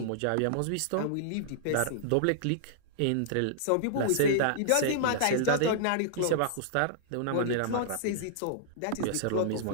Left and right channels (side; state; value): both; different; correlation -0.01